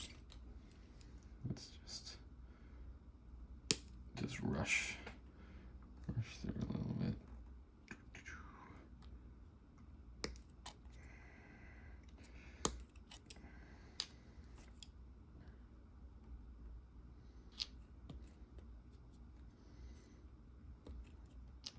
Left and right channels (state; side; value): identical; both; correlation 1.00